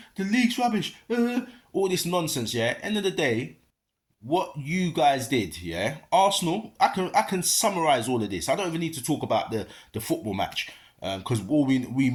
the league's rubbish? All this nonsense. Yeah. End of the day, what you guys did, yeah. Arsenal. I can summarize all of this. I don't even need to talk about the football match because all we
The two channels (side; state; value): both; identical; correlation 1.00